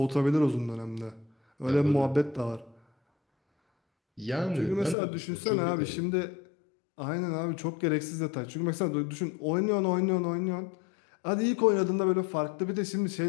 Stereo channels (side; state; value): right; drops out; at 5.0 s